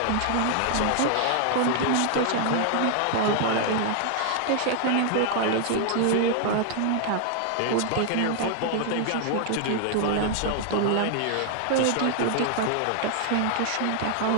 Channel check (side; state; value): both; different; correlation 0.00